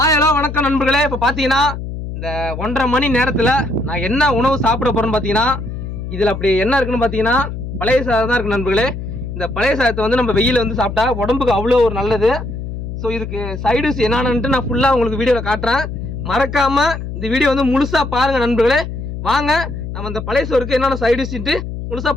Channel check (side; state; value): left; noise; hum, 7 dB below the sound